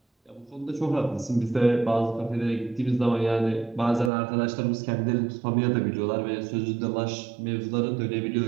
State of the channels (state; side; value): drops out; left; at 4.1 s